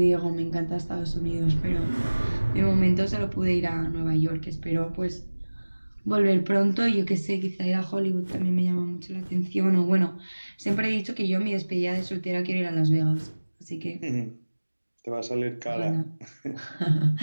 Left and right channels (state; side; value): inverted; both; correlation -1.00